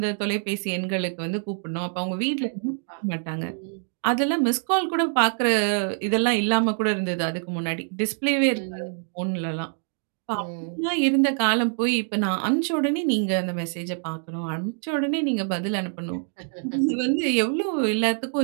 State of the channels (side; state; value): left; silent; 56 dB below the other